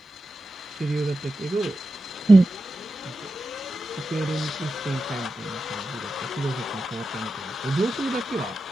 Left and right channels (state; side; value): normal; both; correlation 0.91